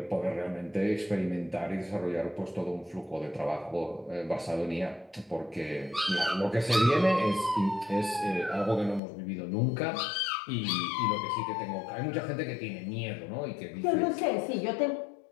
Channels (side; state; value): right; drops out; at 9.0 s